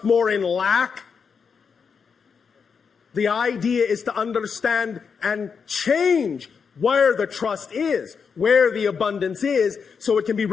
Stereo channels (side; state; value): right; quieter; 6.0 dB